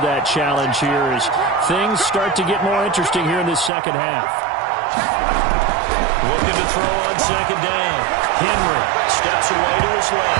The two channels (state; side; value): drops out; left; at 3.7 s